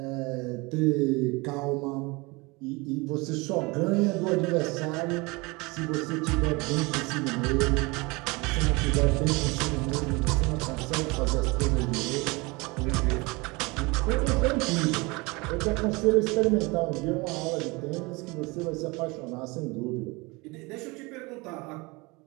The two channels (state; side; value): quieter; left; 25.4 dB